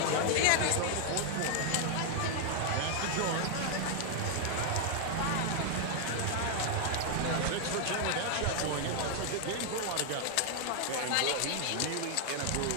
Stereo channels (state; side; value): different; both; correlation 0.00